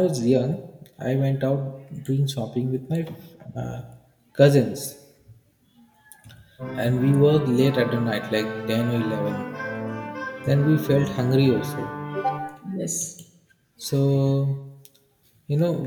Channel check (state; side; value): identical; both; correlation 1.00